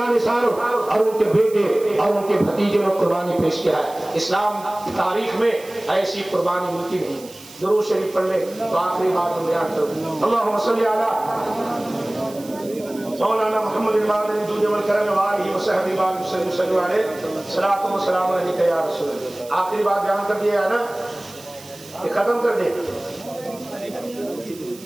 اور ان کے بیٹے اور ان کے بھتیجے نے قربانی پیش کیا ہے. اسلام کی تاریخ میں ایسی قربانی ملتی نہیں. درود شریف پڑھ لے تو آخری بات میں بیان کروں. اللہم صلی علی مولانا محمد المادن جود والکرم وآلہ وصحبہ وسلم صلی اللہ علیہ صلاۃ و سلام علیک یا رسول اللہ. آخری بات بیان کر دیا ہے نا کہ ختم کر دے.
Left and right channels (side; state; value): right; noise; hiss, 19 dB below the sound